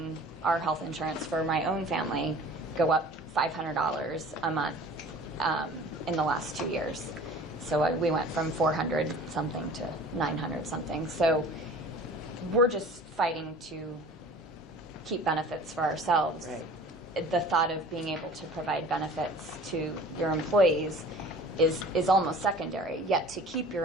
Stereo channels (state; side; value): normal; both; correlation 0.45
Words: our health insurance for my own family go up $500 a month in the last 2 years. So we went from 400 something to 900 something. So we're just fighting to keep benefits for ourselves. Right. The thought of being able to provide benefits to your employees is almost secondary. Yet to keep your